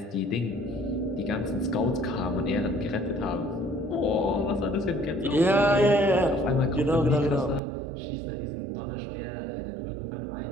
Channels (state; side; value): drops out; left; at 7.6 s